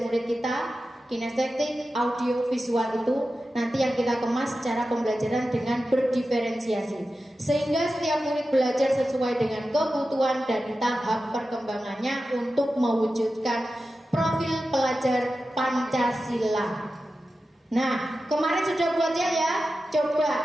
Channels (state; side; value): normal; both; correlation 0.93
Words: murid kita, kinestetik, audio, visual itu nanti yang kita kemas secara pembelajaran dengan berdiferensiasi. Sehingga setiap murid belajar sesuai dengan kebutuhan dan tahap perkembangannya untuk mewujudkan profil pelajar Pancasila. Nah, kemarin sudah buat ya? Coba